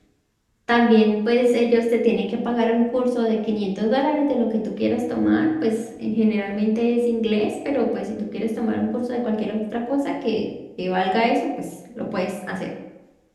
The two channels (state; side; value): identical; both; correlation 1.00